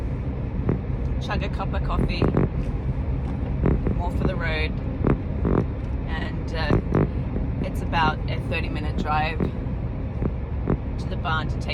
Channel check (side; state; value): both; identical; correlation 1.00